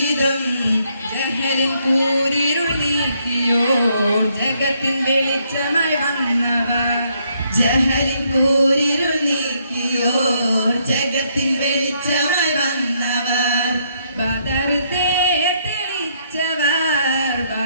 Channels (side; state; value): both; inverted; correlation -0.72